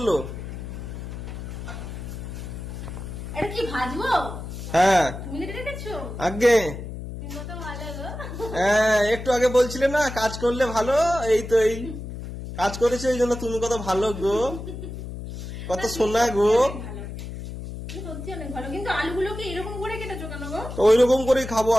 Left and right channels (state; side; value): noise; left; hum, 9 dB below the sound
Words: এটা কি ভাজবো? হ্যাঁ তুমি রেখেছো আগে। তুমি কত ভালো গো। হ্যাঁ একটু আগে বলছিলে না কাজ করলে ভালো, এই তো এই কাজ করেছে, এই জন্য তুমি কত ভালো গো, কত সোনা গো। সত্যি অনেক ভালো, কিন্তু আলুগুলোকে এরকম করে কেটেছো কেন গো? তো ওই রকম করেই খাবো